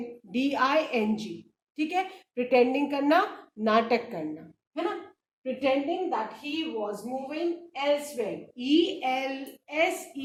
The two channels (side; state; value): both; identical; correlation 1.00